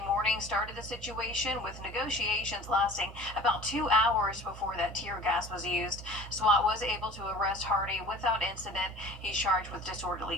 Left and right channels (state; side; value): normal; both; correlation 0.43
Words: morning started the situation, with negotiations lasting about 2 hours before that tear gas was used. SWAT was able to arrest Hardy without incident. He's charged with